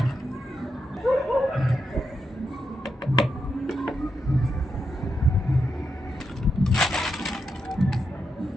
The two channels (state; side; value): normal; both; correlation 0.84